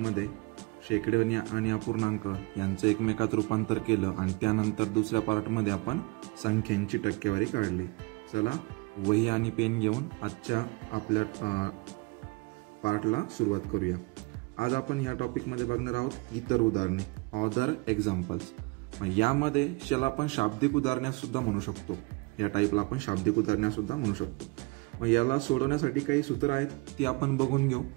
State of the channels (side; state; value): left; quieter; 26.7 dB